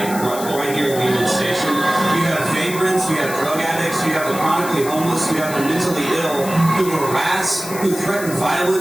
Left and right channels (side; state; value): left; noise; hiss, 10 dB below the sound